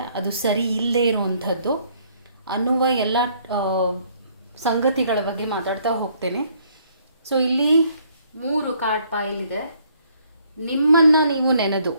ಅದು ಸರಿ ಇಲ್ಲದೇ ಇರುವಂಥದ್ದು ಅನ್ನುವ ಎಲ್ಲ ಸಂಗತಿಗಳ ಬಗ್ಗೆ ಮಾತಾಡ್ತಾ ಹೋಗ್ತೇನೆ. ಸೊ ಇಲ್ಲಿ 3 ಕಾರ್ಡ್ ಪೈಲ್ ಇದೆ. ನಿಮ್ಮನ್ನು ನೀವು ನೆನೆದು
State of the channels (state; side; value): inverted; both; correlation -0.65